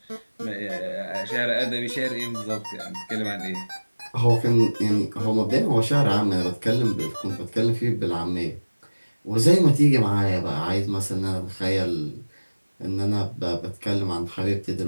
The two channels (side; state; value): both; inverted; correlation -1.00